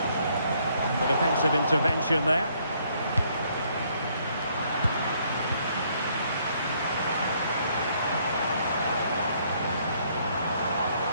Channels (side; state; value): both; inverted; correlation -0.67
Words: And the defensive intervention there.